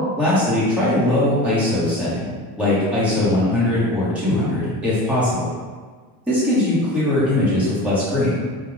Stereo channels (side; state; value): both; normal; correlation 0.34